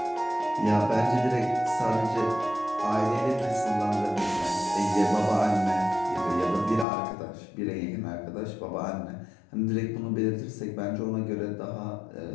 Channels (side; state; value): right; drops out; at 6.9 s